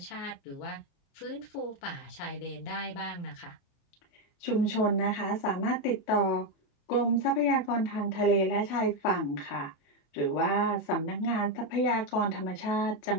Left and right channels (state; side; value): late; right; 28 ms